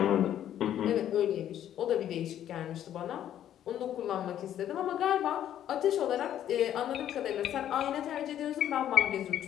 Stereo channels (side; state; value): right; quieter; 11.0 dB